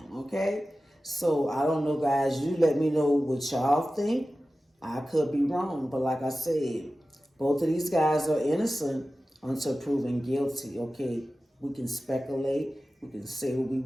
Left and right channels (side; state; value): both; normal; correlation 0.95